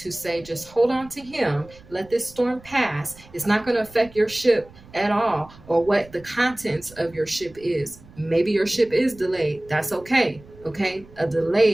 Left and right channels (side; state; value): right; noise; rumble, 22 dB below the sound